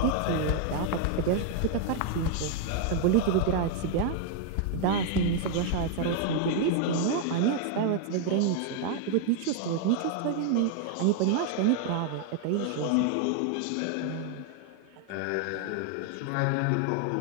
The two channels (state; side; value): different; both; correlation 0.00